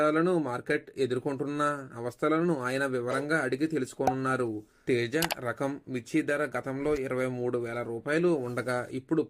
మార్కెట్ ఎదుర్కొంటున్న అవస్థలను ఆయన వివరంగా అడిగి తెలుసుకోనున్నారు. తేజ రకం మిర్చి ధర గతంలో 23,000 రూపాయలు ఉండగా ఇప్పుడు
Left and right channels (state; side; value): identical; both; correlation 1.00